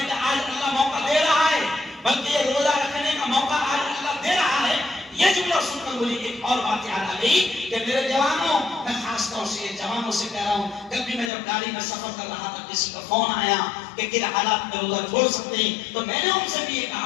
کا آج اللہ موقع دے رہا ہے، بلکہ یہ روزہ رکھنے کا موقع آج اللہ دے رہا ہے. یہ جملہ سن کر مجھے ایک اور بات یاد آ گئی کہ میرے جوانوں، میں خاص طور سے جوانوں سے کہہ رہا ہوں، کل بھی میں جب گاڑی میں سفر کر رہا تھا کسی کا فون آیا کہ کن حالات میں روزہ چھوڑ سکتے ہیں، تو میں نے ان سے بھی یہ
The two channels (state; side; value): drops out; right; at 11.3 s